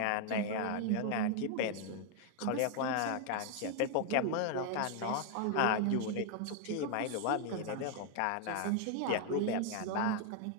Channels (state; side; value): different; both; correlation 0.00